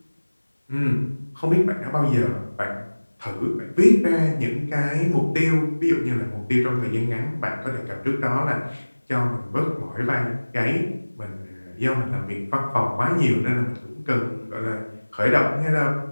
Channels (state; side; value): inverted; both; correlation -1.00